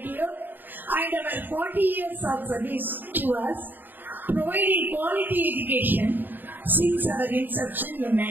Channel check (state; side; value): late; left; 0.091 ms